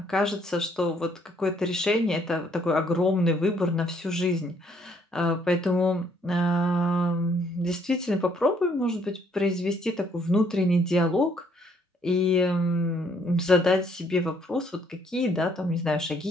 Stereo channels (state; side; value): normal; both; correlation 0.66